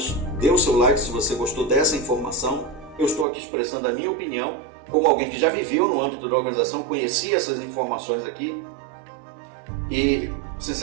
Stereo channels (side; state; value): left; drops out; at 3.2 s